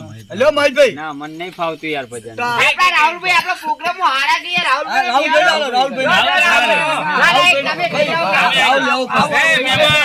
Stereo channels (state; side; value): identical; both; correlation 1.00